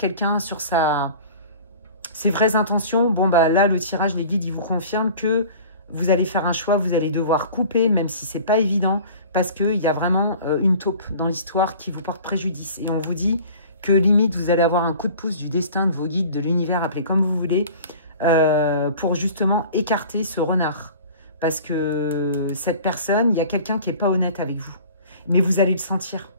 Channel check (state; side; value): inverted; both; correlation -0.44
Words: sur ses vraies intentions. Bon, bah là, le tirage, les guides, ils vous confirment que vous allez faire un choix, vous allez devoir couper, même si c'est pas évident, parce qu'il y a vraiment une taupe dans l'histoire qui vous porte préjudice. Et on vous dit que limite, vous allez avoir un coup de pouce du destin, de vos guides, de l'univers, appelez comme vous voulez, pour justement écarter ce renard. Parce que cette personne, il y a quelqu'un qui n'est pas honnête avec vous. Mais vous allez le sentir.